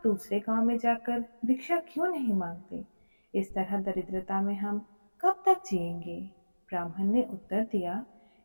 दूसरे गांव में जाकर भिक्षा क्यों नहीं मांगते? इस तरह दरिद्रता में हम कब तक जिएंगे? ब्राह्मण ने उत्तर दिया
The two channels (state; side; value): inverted; both; correlation -1.00